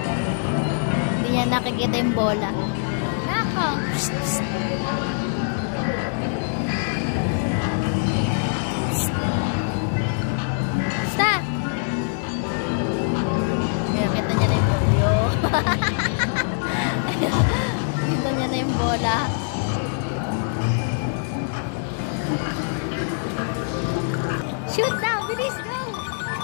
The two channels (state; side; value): silent; right; 63 dB below the other